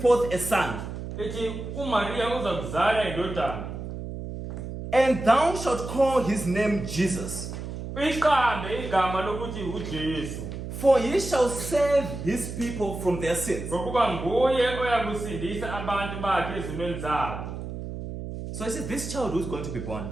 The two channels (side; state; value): right; noise; hum, 7 dB below the sound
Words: a son, Ithi kuMaria uzakuzala indodana. and thou shalt call his name Jesus. Uyiqambe igama lokuthi uJesu. For he shall save his people from their sins. Ngokuba nguye oyakusindisa abantu bakhe ezimeni zabo. So I said, this child who's going to be born,